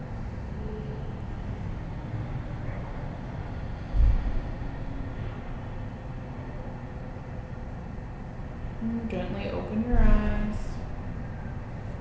And gently open your eyes.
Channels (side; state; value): both; identical; correlation 1.00